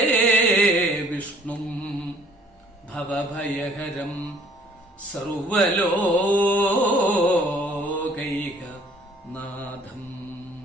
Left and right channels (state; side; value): normal; both; correlation 0.57